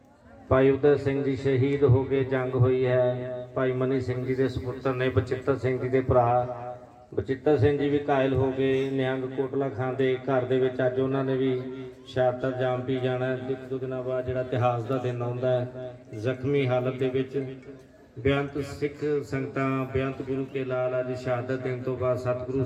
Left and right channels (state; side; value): identical; both; correlation 1.00